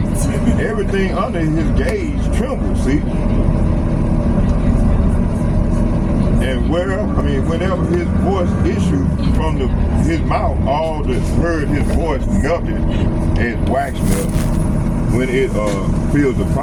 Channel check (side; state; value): both; identical; correlation 1.00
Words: everything under his gaze trembled, see? And whenever his voice issued from his mouth, all that heard his voice melted as wax melt when it filled the